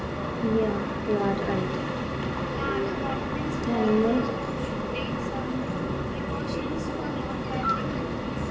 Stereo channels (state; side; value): identical; both; correlation 1.00